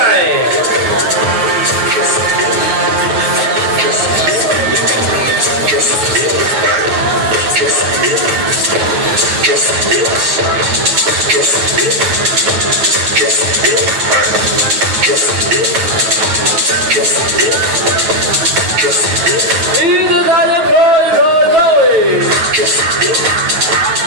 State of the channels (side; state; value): left; late; 9.3 ms